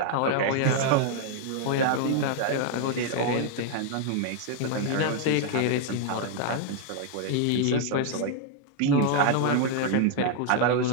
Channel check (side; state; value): both; different; correlation 0.00